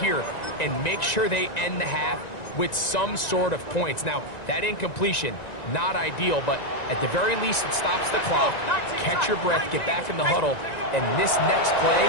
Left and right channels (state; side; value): late; right; 1.9 ms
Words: here and make sure they end the half with some sort of points. Now, that incompletion, not ideal, but at the very least, it stops the clock. Catch your breath, get back in the huddle, and this next play,